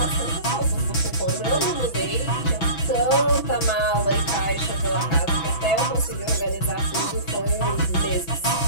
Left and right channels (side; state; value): right; late; 6.0 ms